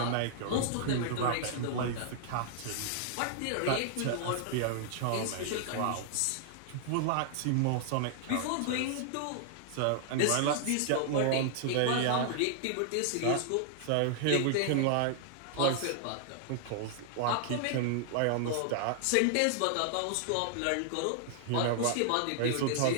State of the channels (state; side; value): different; both; correlation -0.01